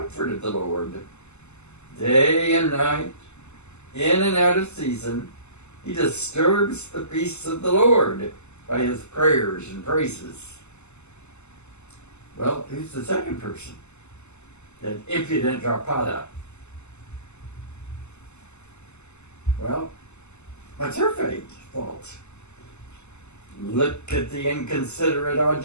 of the Lord. Day and night, in and out of season, he disturbs the peace of the Lord by his prayers and praises." "Well, who's the second person?" "That impudent Drapada." "Well, what's her fault?" "Look at the inconsiderate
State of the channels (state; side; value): late; right; 0.82 ms